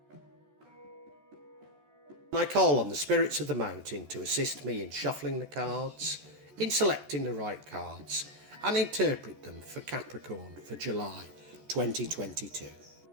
I call on the spirits of the mountain to assist me in shuffling the cards, in selecting the right cards, and interpret them for Capricorn for July 2022.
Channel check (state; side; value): late; left; 14 ms